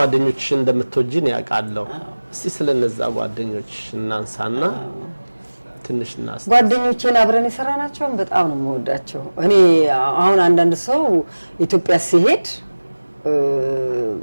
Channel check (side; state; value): both; inverted; correlation -1.00